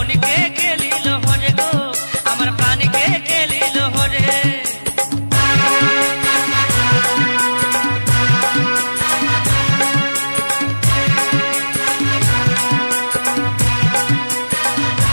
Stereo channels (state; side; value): inverted; both; correlation -1.00